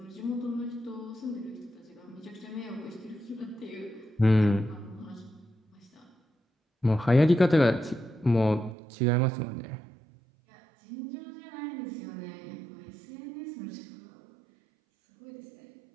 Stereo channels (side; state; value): left; drops out; at 8.8 s